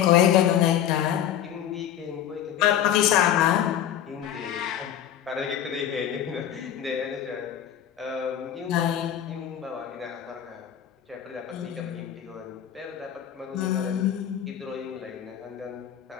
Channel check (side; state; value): right; quieter; 10.2 dB